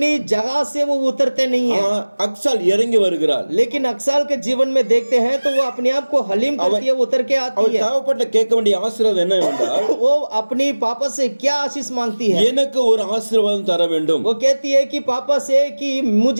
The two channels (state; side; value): inverted; both; correlation -1.00